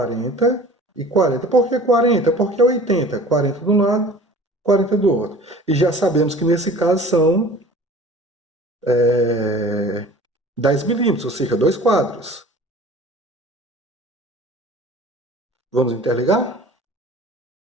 e 40. Por que 40? Porque é 80. 40 de um lado, 40 do outro. E já sabemos que nesse caso são 10 milímetros, ou seja, 2 quadros. Vamos interligar?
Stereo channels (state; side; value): normal; both; correlation 0.44